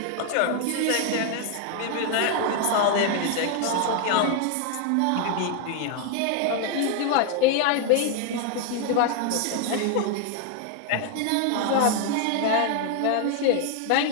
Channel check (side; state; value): both; different; correlation 0.00